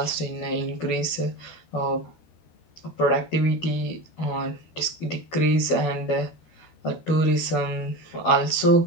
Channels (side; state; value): right; late; 12 ms